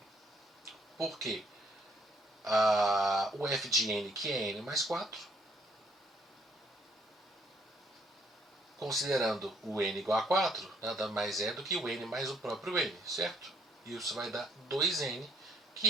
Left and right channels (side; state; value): both; normal; correlation 0.67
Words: Por quê? O f de n, que é n mais 4, considerando o n igual a 4, nada mais é do que o n mais o próprio n, certo? E isso vai dar 2n,